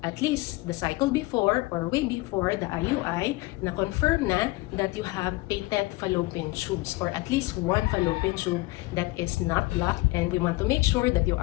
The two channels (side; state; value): right; quieter; 21.2 dB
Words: at least the cycle before or way before the IUI na confirm na that you have patent fallopian tubes or at least one fallopian tube that is not blocked, and we want to make sure that you